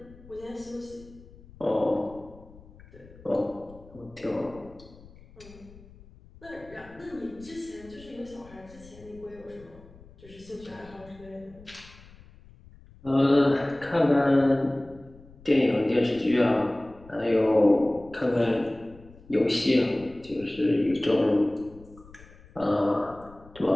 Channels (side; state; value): left; noise; rumble, 22 dB below the sound